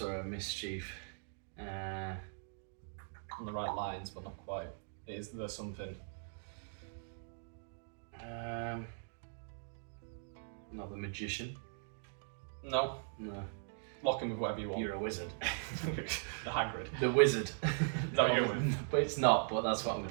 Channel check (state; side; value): silent; left; digital silence